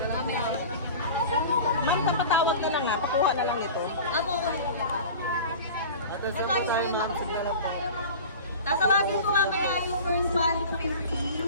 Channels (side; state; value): both; inverted; correlation -0.37